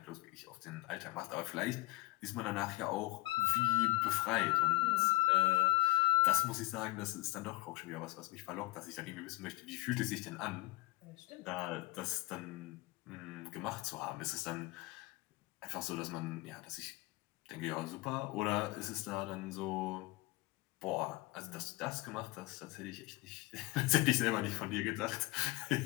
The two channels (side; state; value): right; quieter; 21.6 dB